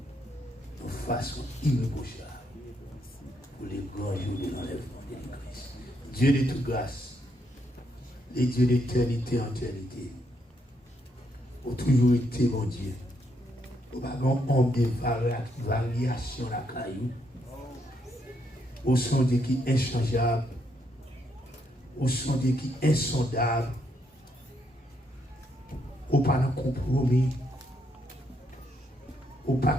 de façon irréprochable pour les grands jours de l'enlèvement de l'église. Dieu de toute grâce, les dieux d'éternité en éternité, ont toujours été mon Dieu. Au bagon, on des variations la caillou. Au son Dieu qui est inchangeable. Au son Dieu qui est insondable. Au pas de compromis. Au pas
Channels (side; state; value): both; normal; correlation 0.76